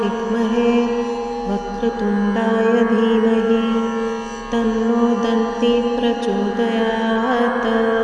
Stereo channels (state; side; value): identical; both; correlation 1.00